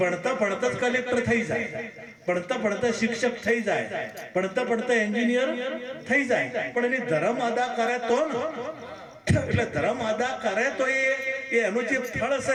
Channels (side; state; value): both; identical; correlation 1.00